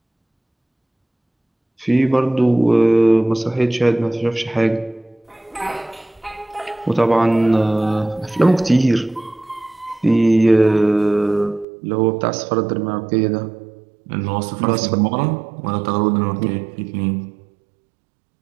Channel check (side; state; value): left; drops out; at 11.7 s